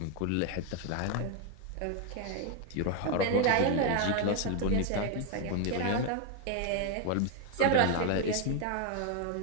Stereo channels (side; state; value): both; different; correlation 0.01